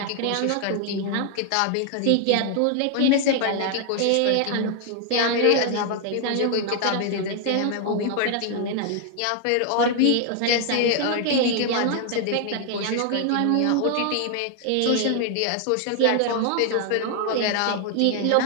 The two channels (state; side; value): different; both; correlation 0.00